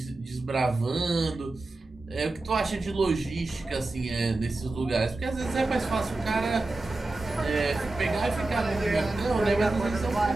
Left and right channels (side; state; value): left; quieter; 3.0 dB